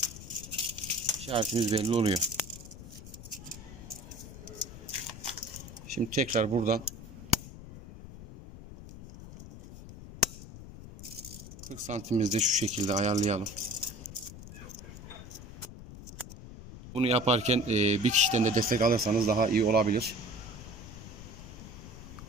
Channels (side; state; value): left; noise; rumble, 14 dB below the sound